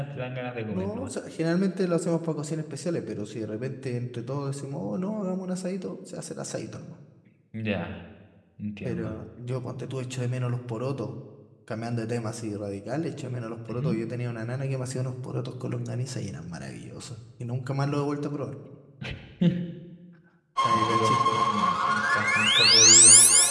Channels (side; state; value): both; identical; correlation 1.00